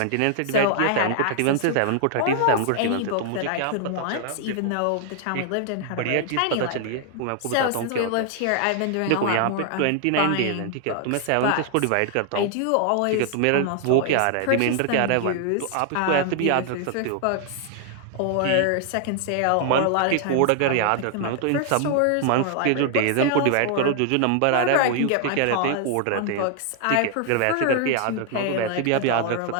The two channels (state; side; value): different; both; correlation 0.00